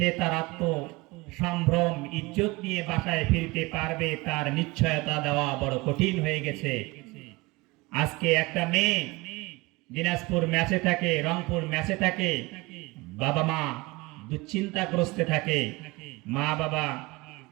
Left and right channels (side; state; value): left; quieter; 23.2 dB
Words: তার আত্ম সম্ভ্রম ইজ্জত নিয়ে বাসায় ফিরতে পারবে, তার নিশ্চয়তা দেওয়া বড় কঠিন হয়ে গেছে। আজকে একটা মেয়ে দিনাজপুর ম্যাচে থাকে, রংপুর ম্যাচে থাকে, বাবা মা দুশ্চিন্তাগ্রস্তে থাকে, মা বাবা